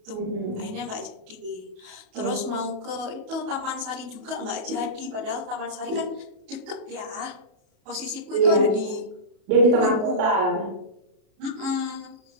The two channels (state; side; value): late; left; 37 ms